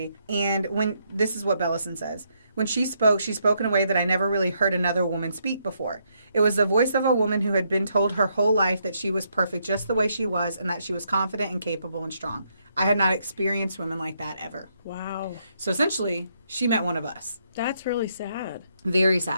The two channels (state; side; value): inverted; both; correlation -0.75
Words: And this is what Bellesen says. When she spoke in a way that I never really heard another woman speak before. It was the voice of a woman who had been told her whole life that she was perfect just the way she was and that she was confident and capable and strong. I had not experienced women like that ever. Wow. So essentially, she met one of us. That's really sad. Very